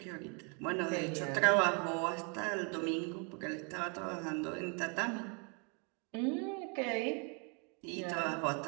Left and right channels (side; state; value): left; quieter; 34.8 dB